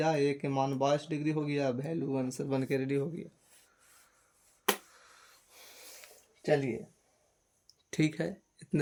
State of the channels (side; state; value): both; identical; correlation 1.00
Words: ए के मान 22 डिग्री हो गया। वैल्यू आंसर बन के रेडी हो गया। चलिए ठीक है,